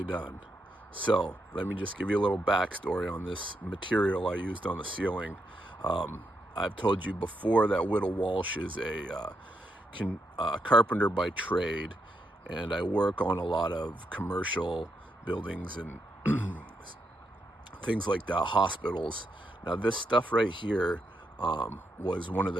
done. So let me just give you a little backstory on this material I used on the ceiling. I've told you before that Whittle Walsh is a carpenter by trade, and I work on a lot of commercial buildings and things like that, hospitals. Now this stuff right here was one of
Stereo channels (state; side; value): normal; both; correlation 0.81